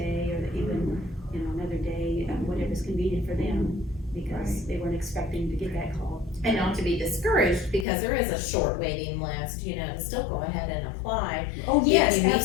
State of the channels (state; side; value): drops out; right; at 7.9 s